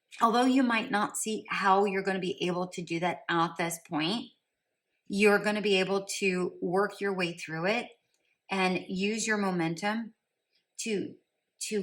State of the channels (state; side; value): identical; both; correlation 1.00